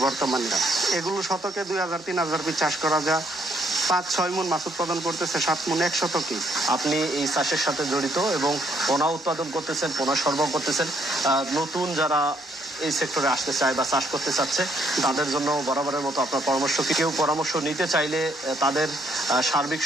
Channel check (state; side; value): normal; both; correlation 0.69